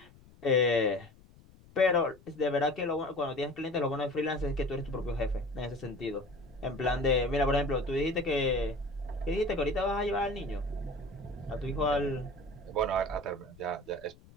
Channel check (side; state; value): left; noise; rumble, 24 dB below the sound